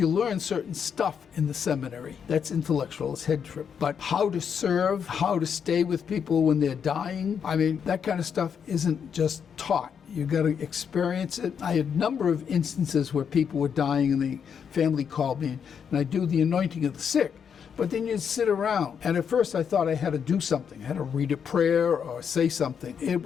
learn certain stuff in the seminary. That's intellectual, it's head trip. But how to serve, how to stay with people when they're dying, I mean, that kind of stuff isn't just taught. You got to experience it. I had a number of instances where people were dying and the family called me, and I do the anointing of the sick. But then you'd sit around, and at first I thought I had to do something. I had to read a prayer or say something. It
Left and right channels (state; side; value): quieter; right; 7.3 dB